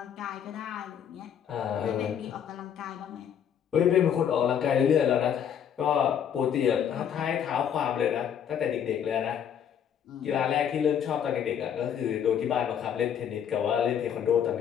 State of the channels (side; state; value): right; quieter; 8.7 dB